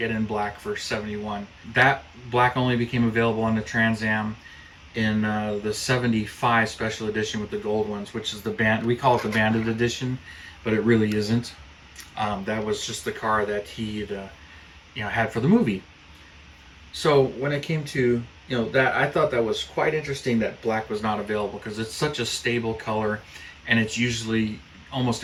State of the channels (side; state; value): both; identical; correlation 1.00